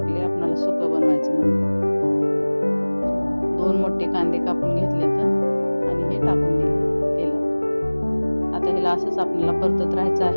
आपल्याला सुकं बनवायचं म्हणून. 2 मोठे कांदे कापून घेतले तर आणि हे टाकून दिले तेलात. आता ह्याला असंच आपल्याला परतत राहायचं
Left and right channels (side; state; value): both; inverted; correlation -1.00